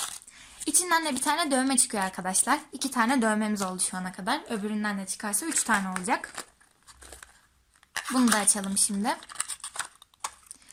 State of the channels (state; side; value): identical; both; correlation 1.00